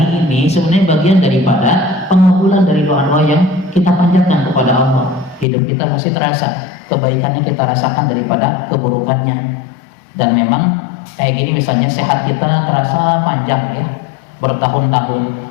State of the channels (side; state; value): right; drops out; at 5.5 s